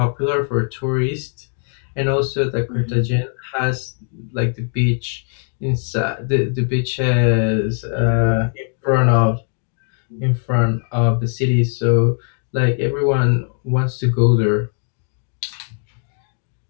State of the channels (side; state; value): right; silent; 56 dB below the other